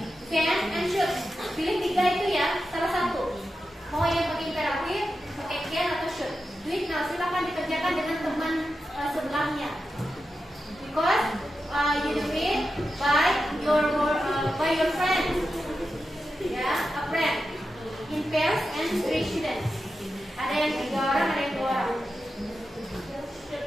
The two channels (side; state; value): both; normal; correlation 0.90